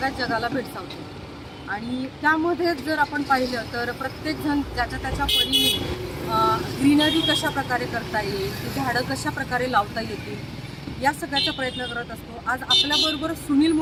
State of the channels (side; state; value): both; identical; correlation 1.00